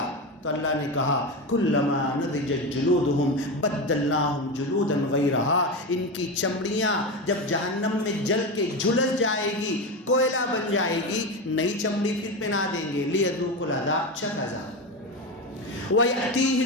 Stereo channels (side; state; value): both; normal; correlation 0.18